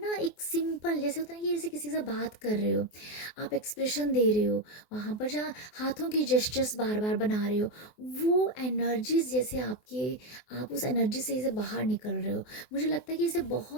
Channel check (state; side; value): late; right; 24 ms